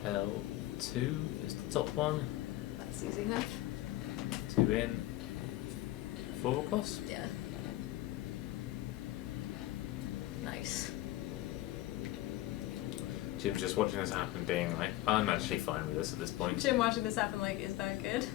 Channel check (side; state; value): right; quieter; 16.1 dB